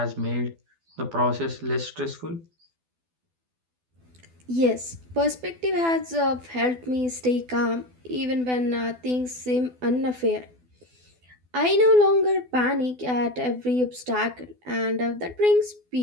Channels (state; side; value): late; left; 12 ms